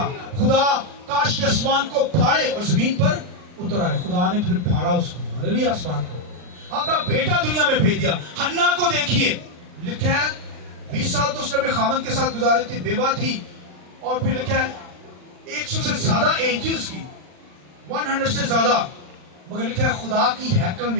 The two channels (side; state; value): left; late; 39 ms